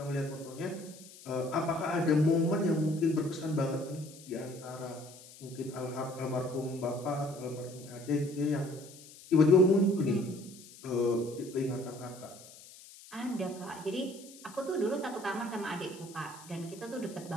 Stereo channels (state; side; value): noise; left; hiss, 19 dB below the sound